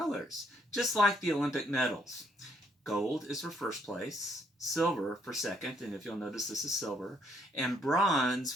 just like the Olympic medals. Gold is for first place, silver for second, and if you'll notice this is silver, and bronze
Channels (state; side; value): normal; both; correlation 0.70